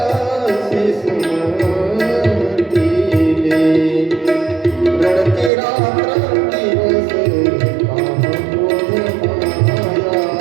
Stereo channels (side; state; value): left; drops out; at 5.5 s